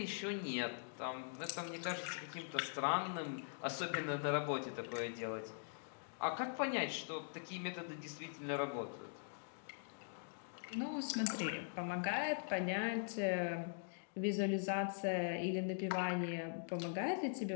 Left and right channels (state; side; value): silent; right; digital silence